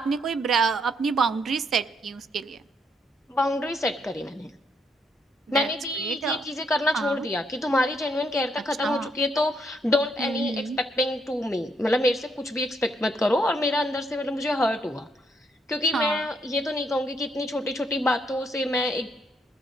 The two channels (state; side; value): normal; both; correlation 0.74